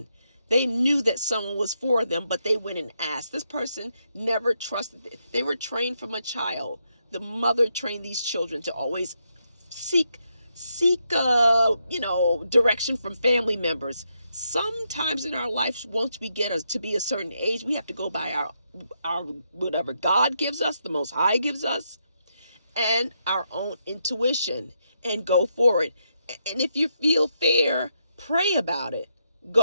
They knew that someone was for them, but they went and asked. This person never trusted. They were trained from a child. The mother trained these children to always seek direction from family members. Sometimes in our life, once we get us to be a certain age, we have to go by our whatever God gives us, the Most High gives us, and our own intuition, and go for it. And if you feel fear, pray about it.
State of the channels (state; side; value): inverted; both; correlation -0.80